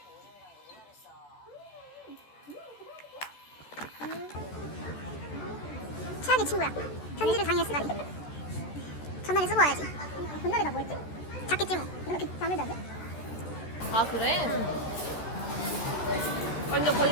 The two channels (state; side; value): late; right; 14 ms